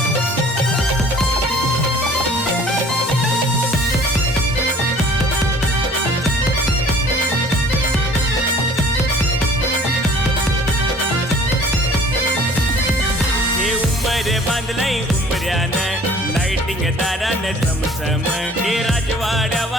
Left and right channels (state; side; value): normal; both; correlation 0.51